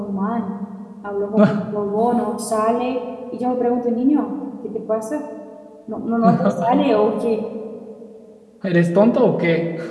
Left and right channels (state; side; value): identical; both; correlation 1.00